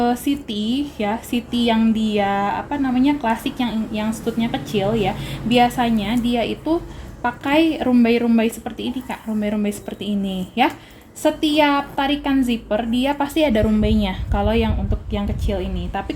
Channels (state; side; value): identical; both; correlation 1.00